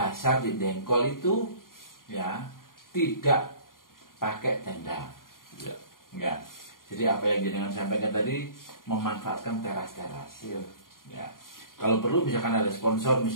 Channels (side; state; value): right; late; 0.91 ms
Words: di Dengkol itu ya tidak pakai tenda. Ya. Jadi apa yang jenengan sampaikan tadi memanfaatkan teras-teras. Ya. Kalau perlu misalkan ada sponsor